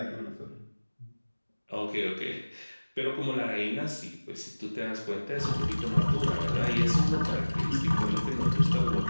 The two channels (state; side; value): inverted; both; correlation -1.00